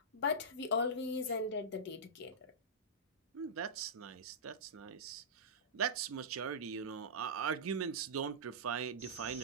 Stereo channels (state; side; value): normal; both; correlation -0.16